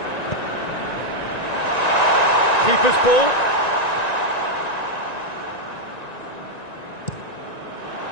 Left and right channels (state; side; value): late; right; 1.9 ms